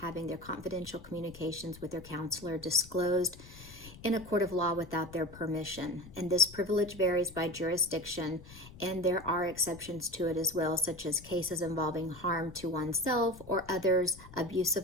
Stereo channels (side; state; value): left; noise; rumble, 18 dB below the sound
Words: their confidential communications with their counselor disclosed in a court of law without their permission. And this privilege varies by jurisdiction, and there are exceptions to it as well, such as cases involving harm to oneself or others, abuse